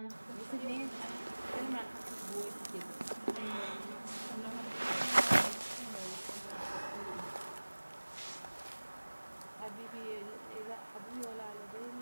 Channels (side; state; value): both; inverted; correlation -1.00